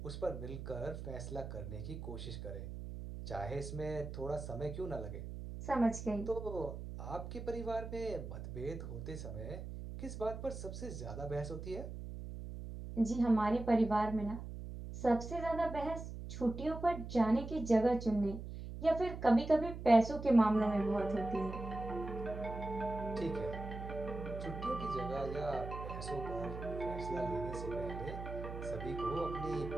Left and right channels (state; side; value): noise; right; hum, 8 dB below the sound